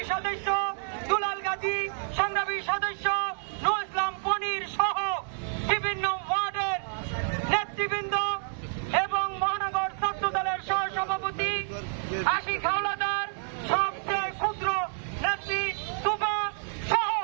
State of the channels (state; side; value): silent; left; 59 dB below the other